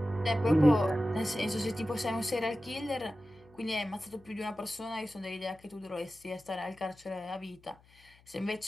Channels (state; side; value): noise; left; hum, 28 dB below the sound